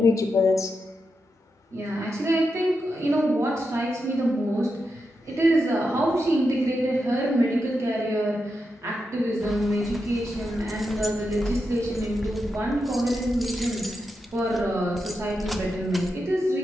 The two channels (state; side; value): normal; both; correlation 0.86